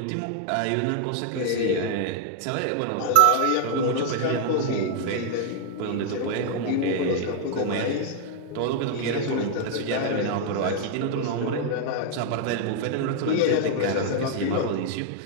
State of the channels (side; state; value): both; different; correlation 0.00